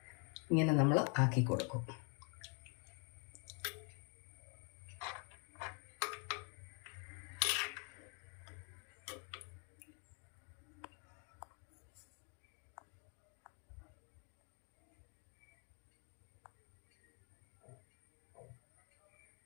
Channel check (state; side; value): quieter; right; 38.7 dB